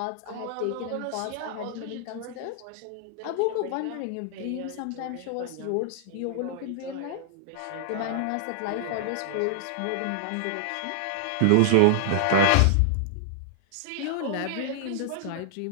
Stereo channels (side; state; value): both; different; correlation -0.01